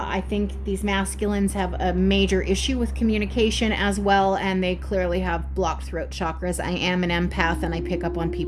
think these masculines have a major issue with communication as well, and they clearly have blocked throat chakras. I am an empath, and I pick up on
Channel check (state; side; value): identical; both; correlation 1.00